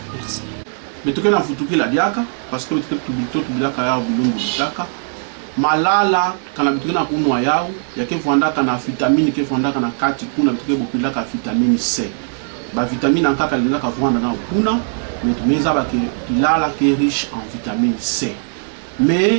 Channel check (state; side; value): silent; left; digital silence